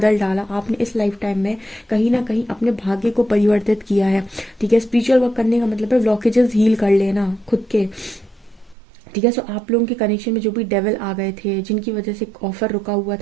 डाला। आपने इस लाइफ टाइम में कहीं ना कहीं अपने भाग्य को परिवर्तित किया है, ठीक है। स्पिरिचुअल वर्क करने का मतलब है ब्लॉकेजेस हील कर लेना खुद के, ठीक है। सो आप लोगों के कनेक्शन में जो भी डेविल आ गए थे, जिनकी वजह से ऑफर रुका हुआ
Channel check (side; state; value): left; drops out; at 8.8 s